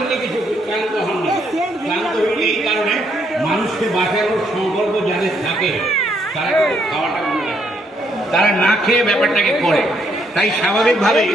কিছু, ক্লান্ত হন না। ক্লান্ত হইলে এই কারণে মানুষকে বাঁচানোর সংকল্প যাদের থাকে তারা কিন্তু খাওয়াটা মনে রাখে, তারা না খেয়ে ব্যাপারটাকে করে। তাই স্বাভাবিকভাবেই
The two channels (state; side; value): normal; both; correlation 0.73